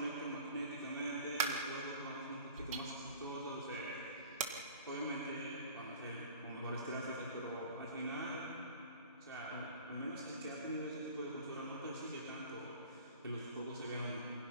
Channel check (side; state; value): both; inverted; correlation -0.43